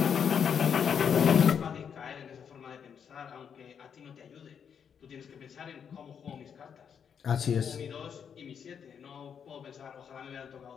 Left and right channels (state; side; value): quieter; right; 7.5 dB